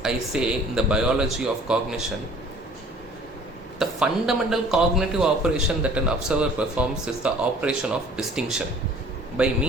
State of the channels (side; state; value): both; normal; correlation 0.51